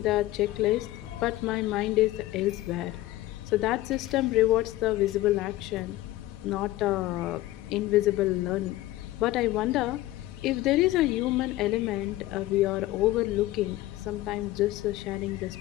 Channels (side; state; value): right; quieter; 16.5 dB